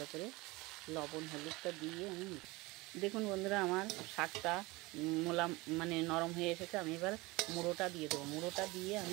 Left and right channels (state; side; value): quieter; left; 22.5 dB